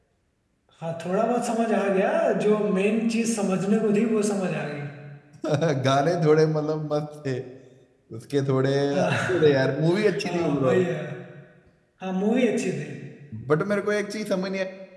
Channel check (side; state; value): both; identical; correlation 1.00